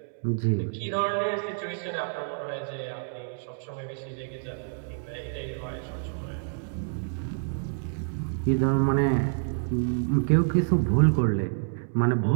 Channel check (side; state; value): left; silent; digital silence